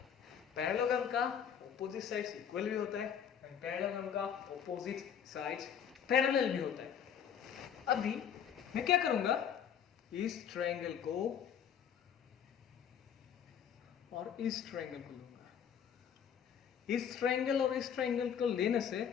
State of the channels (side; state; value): right; quieter; 8.3 dB